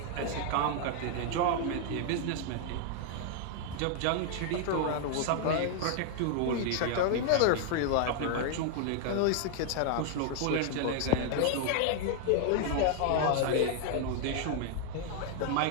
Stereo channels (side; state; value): both; different; correlation 0.00